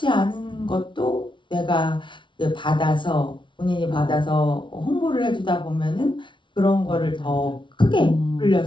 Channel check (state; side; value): late; right; 0.24 ms